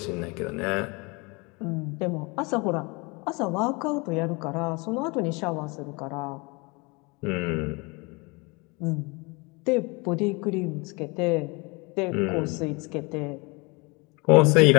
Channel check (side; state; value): right; quieter; 28.0 dB